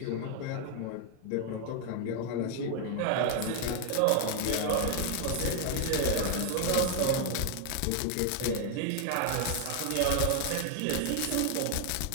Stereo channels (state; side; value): different; both; correlation 0.00